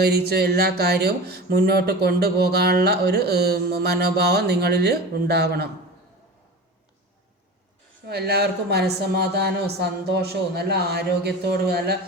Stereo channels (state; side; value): normal; both; correlation 0.32